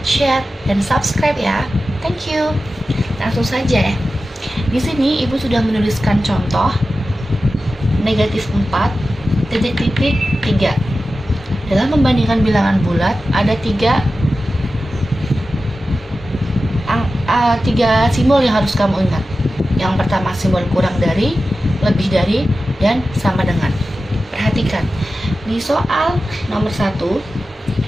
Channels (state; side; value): normal; both; correlation 0.94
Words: share, dan subscribe ya. Thank you. Langsung saja ya. Di sini ibu sudah menuliskan contoh negatif 4 titik-titik 3. Dalam membandingkan bilangan bulat ada tiga simbol yang harus kamu ingat. Yang pertama simbol kurang dari, lebih dari, dan sama dengan. Perhatikan di soal nomor 1